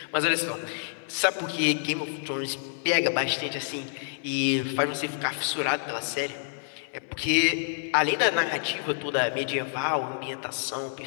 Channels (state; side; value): silent; right; 59 dB below the other